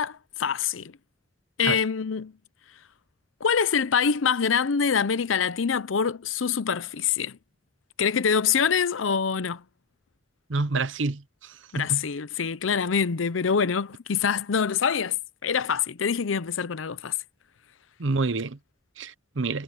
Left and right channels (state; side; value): quieter; right; 5.1 dB